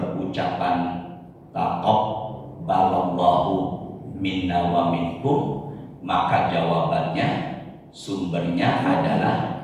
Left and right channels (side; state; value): both; identical; correlation 1.00